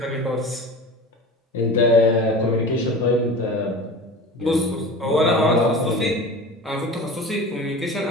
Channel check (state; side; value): normal; both; correlation 0.34